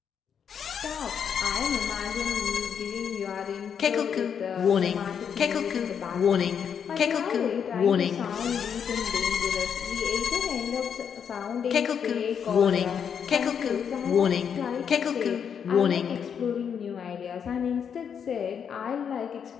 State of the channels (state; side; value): quieter; right; 7.5 dB